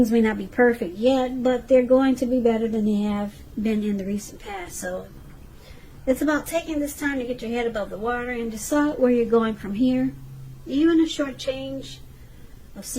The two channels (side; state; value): both; identical; correlation 1.00